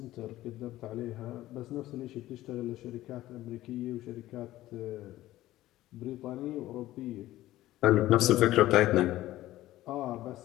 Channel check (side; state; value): right; quieter; 15.5 dB